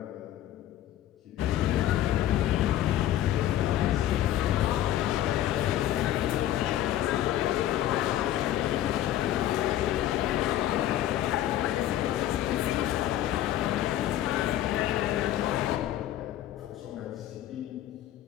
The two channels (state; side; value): quieter; right; 12.7 dB